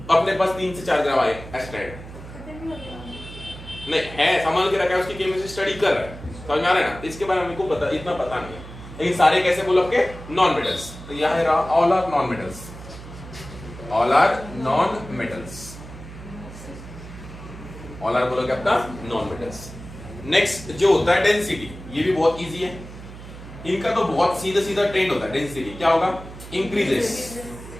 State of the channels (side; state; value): right; noise; hum, 14 dB below the sound